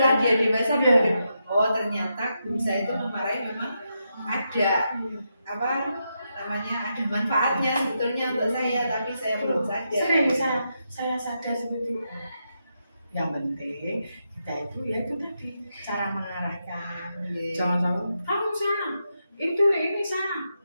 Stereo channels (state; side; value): inverted; both; correlation -0.84